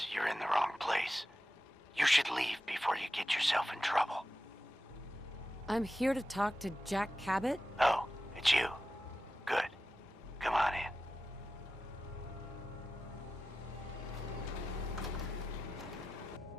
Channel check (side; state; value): both; normal; correlation 0.93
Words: you're in the wrong place. You should leave before you get yourself in trouble. I'm here to talk to Jack Cabot? Oh, it's you. Good. Come on in.